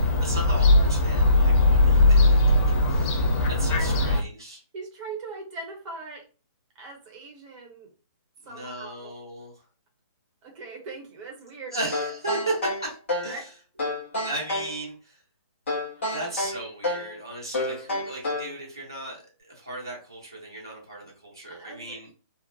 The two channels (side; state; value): both; inverted; correlation -0.58